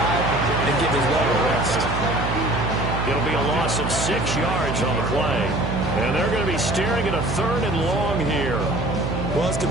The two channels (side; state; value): right; noise; hum, 3 dB below the sound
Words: and give his leg a rest. It'll be a loss of 6 yards on the play. And they're going to be staring at a 3rd and long here. Well, his